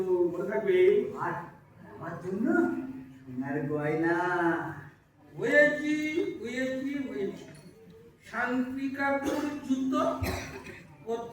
মনে থাকবে। আর আমার জন্য সোনার গয়না। হয়েছি হয়েছি হয়েছি, শান্তি কাকুর জুতো,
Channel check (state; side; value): identical; both; correlation 1.00